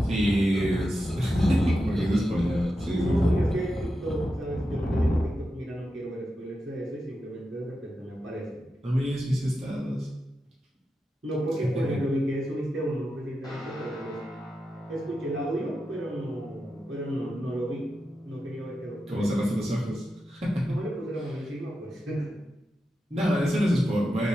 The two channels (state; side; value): normal; both; correlation 0.89